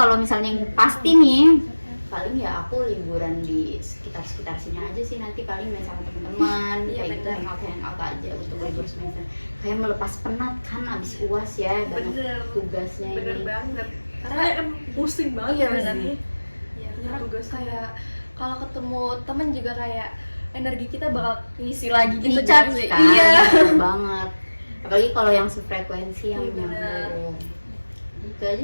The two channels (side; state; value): both; inverted; correlation -1.00